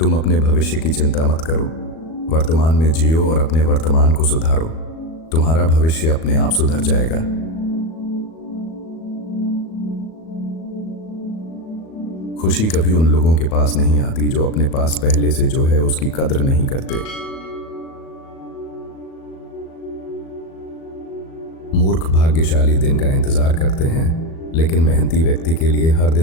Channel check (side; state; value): right; late; 37 ms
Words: अपने भविष्य की चिंता मत करो, वर्तमान में जियो और अपने वर्तमान को सुधारो। तुम्हारा भविष्य अपने आप सुधर जाएगा। खुशी कभी उन लोगों के पास नहीं आती जो अपने पास पहले से जो है उसकी कद्र नहीं करते। मूर्ख भाग्यशाली दिन का इंतजार करते हैं, लेकिन मेहनती व्यक्ति के लिए हर